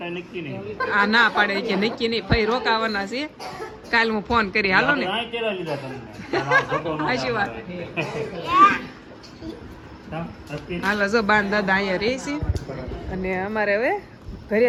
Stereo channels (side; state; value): both; identical; correlation 1.00